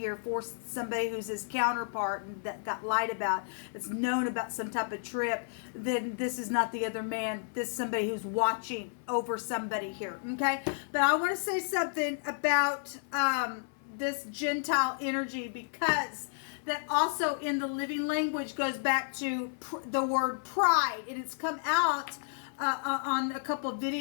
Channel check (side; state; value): right; silent; 57 dB below the other